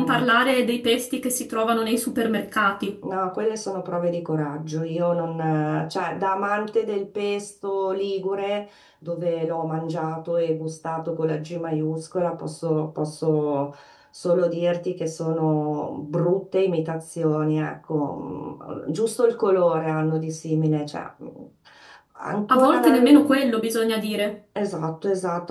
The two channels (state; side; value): identical; both; correlation 1.00